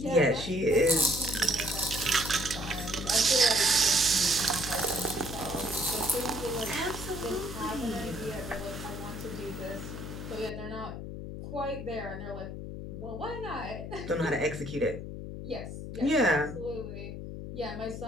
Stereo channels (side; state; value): left; noise; hum, 8 dB below the sound